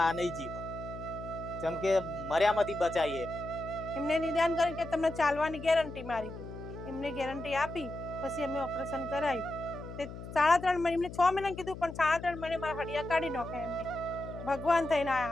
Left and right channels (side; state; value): left; noise; hum, 11 dB below the sound